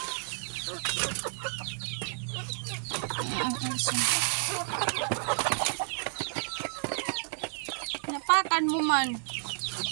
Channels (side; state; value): left; silent; 57 dB below the other